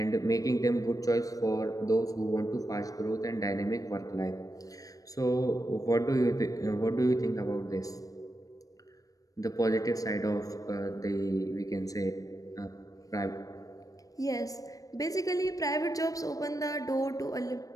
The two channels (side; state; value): right; late; 0.17 ms